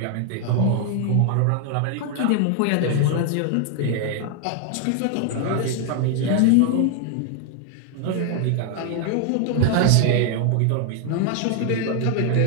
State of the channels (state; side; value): different; both; correlation 0.00